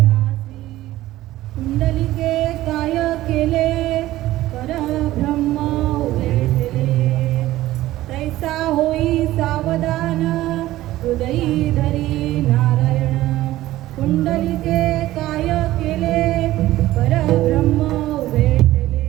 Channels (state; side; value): quieter; left; 15.7 dB